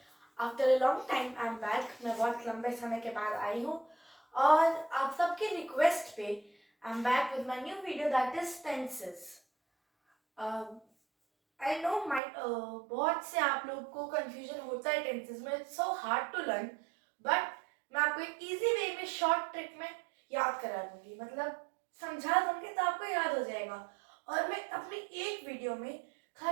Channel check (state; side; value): drops out; left; at 12.2 s